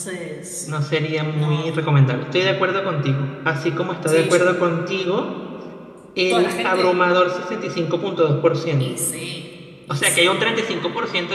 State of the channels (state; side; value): identical; both; correlation 1.00